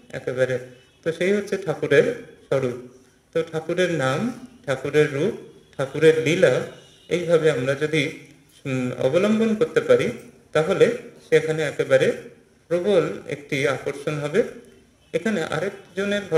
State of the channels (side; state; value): both; identical; correlation 1.00